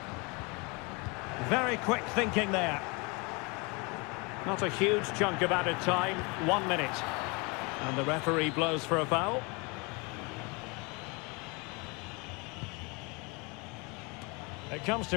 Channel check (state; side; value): quieter; right; 29.1 dB